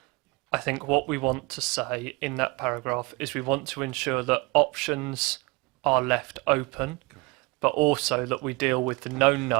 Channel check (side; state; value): left; quieter; 26.7 dB